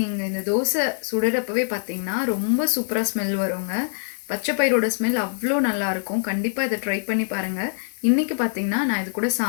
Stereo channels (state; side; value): silent; right; 58 dB below the other